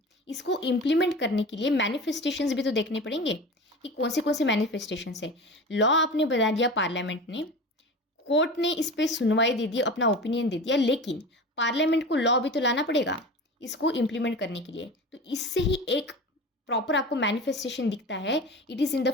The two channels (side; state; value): both; normal; correlation 0.33